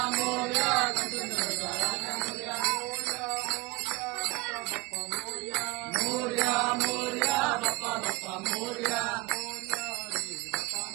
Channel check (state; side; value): quieter; left; 23.0 dB